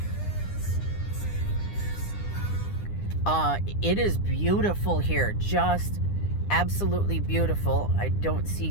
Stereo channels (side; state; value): right; late; 9.9 ms